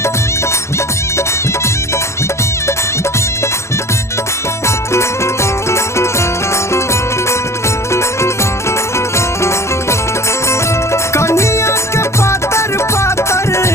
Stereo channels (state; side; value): late; right; 0.13 ms